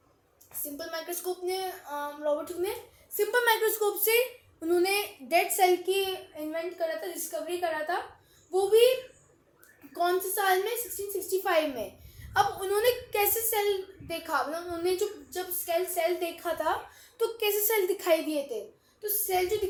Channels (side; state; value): both; identical; correlation 1.00